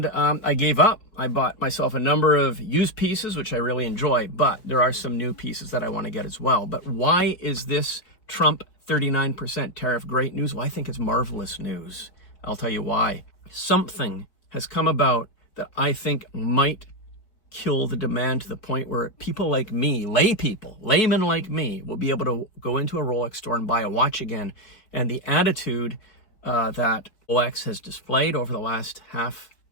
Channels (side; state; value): right; late; 4.6 ms